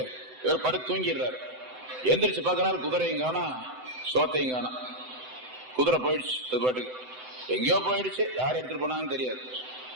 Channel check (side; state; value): left; late; 7.9 ms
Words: இவர் படுத்து தூங்கிடுறாரு. எந்திரிச்சு பாக்குறாரு, குதிரையும் காணா, சோத்தையும் காணா, குதிரை போயிடுச்சு, அது பாட்டுக்கு எங்கேயோ போயிடுச்சு, யார் எடுத்துட்டு போனாங்கன்னு தெரியாது.